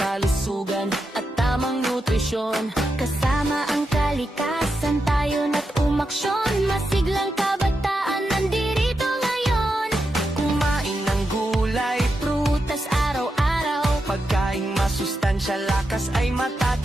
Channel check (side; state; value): both; normal; correlation 0.87